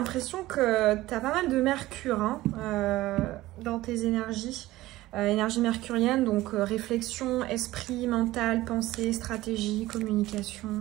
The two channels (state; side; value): quieter; left; 17.1 dB